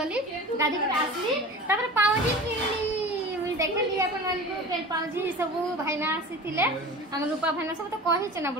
गाधी कर आसली तापरे पावजी किनली देखली अपन मन को के पाउजी सब भाईना आसीथिले हम रूपा भाईना सब तो कहि छ ना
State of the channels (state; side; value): normal; both; correlation 0.36